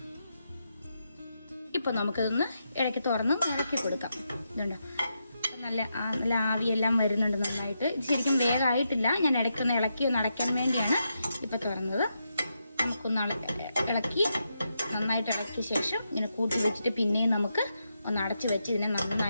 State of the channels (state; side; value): inverted; both; correlation -0.84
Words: ഇപ്പോൾ നമുക്കതൊന്ന് ഇടയ്ക്ക് തുറന്ന് ഇളക്കി കൊടുക്കാം. ഇതുണ്ട്, നല്ല ആവിയെല്ലാം വരുന്നുണ്ട് നന്നായിട്ട്. ഇത് ശരിക്കും വേഗമായിട്ടില്ല, ഞാൻ ഇടയ്ക്കൊന്ന് ഇളക്കി ഒന്ന് അടയ്ക്കാൻ വേണ്ടിയാണ് ഇപ്പോൾ തുറന്നത്. നമുക്കൊന്ന് ഇളക്കി നന്നായിട്ട് ഇളക്കിയ ശേഷം ഇങ്ങനെ കൂട്ടി വെച്ചിട്ട് പിന്നെയും നമുക്ക് ഒന്ന് അടച്ച് വെച്ച് ഇതിനെ